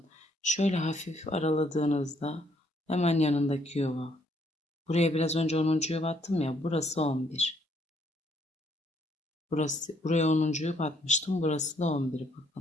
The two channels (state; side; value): normal; both; correlation 0.69